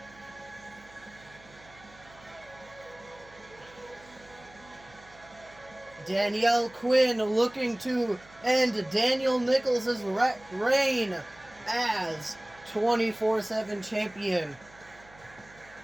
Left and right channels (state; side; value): noise; right; hum, 24 dB below the sound